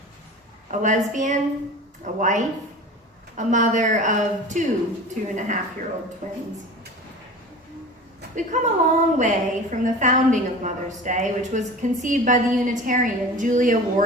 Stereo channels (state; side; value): normal; both; correlation 0.36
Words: a lesbian, a wife, a mother of two 2.5-year-old twins. We've come a long way from the founding of Mother's Day, which was conceived by the Unitarian Julia